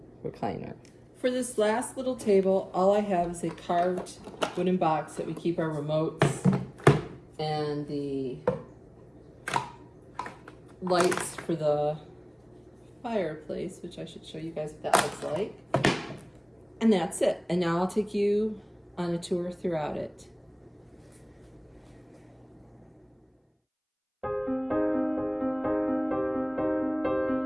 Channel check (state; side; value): identical; both; correlation 1.00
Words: recliner. For this last little table, all I have is a carved wooden box that we keep our remotes and the lights for the fireplace, which I should show you guys what that looks like. And that's it. And now I'll take you on a tour throughout it.